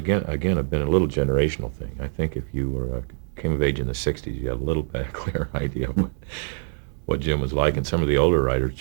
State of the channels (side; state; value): left; silent; 62 dB below the other